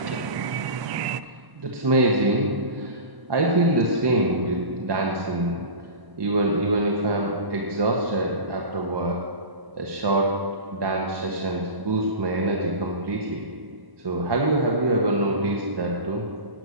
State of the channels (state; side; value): late; left; 1.0 ms